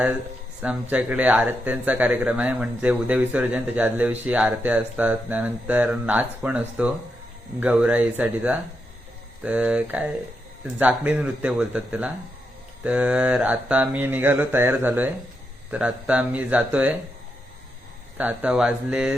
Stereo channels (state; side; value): normal; both; correlation 0.84